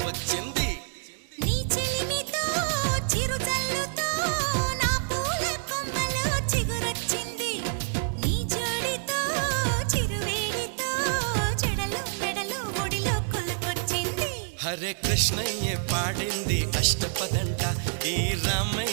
నీ చెలిమితో చిరుజల్లుతో నా పూల కొమ్మలో చిగురొచ్చింది నీ జోడితో చిరువేడితో చెడలు మెడలు ఒడిలో కొలుకొచ్చింది హరే కృష్ణయ్య పాడింది అష్టపదంట ఈ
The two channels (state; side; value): silent; left; digital silence